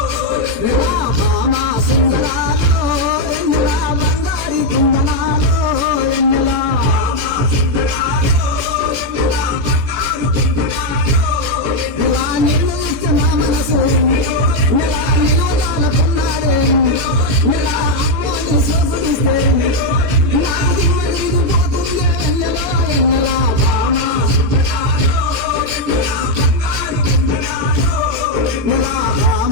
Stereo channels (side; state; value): left; late; 18 ms